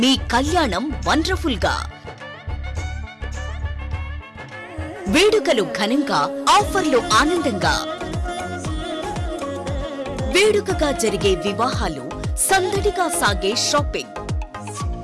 మీ కళ్యాణం వండర్ఫుల్ గా. వేడుకలు ఘనంగా, ఆఫర్లు ఆనందంగా. వేడుకగా జరిగే వివాహాలు, సందడిగా సాగే షాపింగ్.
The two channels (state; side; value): identical; both; correlation 1.00